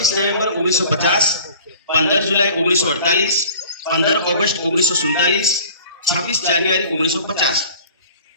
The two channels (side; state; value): both; inverted; correlation -0.46